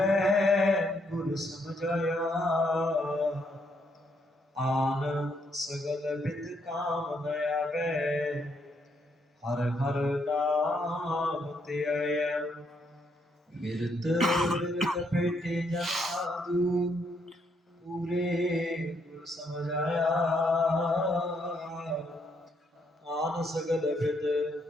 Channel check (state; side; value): normal; both; correlation 0.74